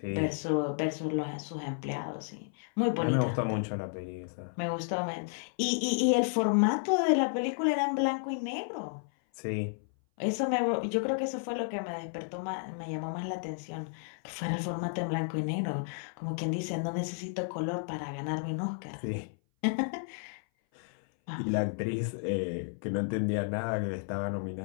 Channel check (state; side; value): silent; right; 56 dB below the other